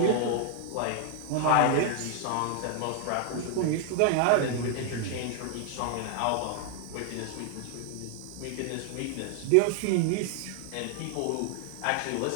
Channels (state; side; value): different; both; correlation 0.00